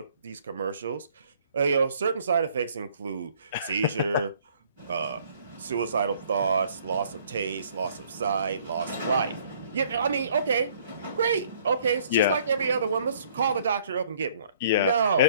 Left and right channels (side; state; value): both; inverted; correlation -0.60